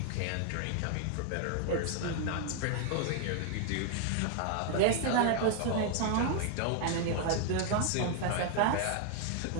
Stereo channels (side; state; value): both; different; correlation 0.00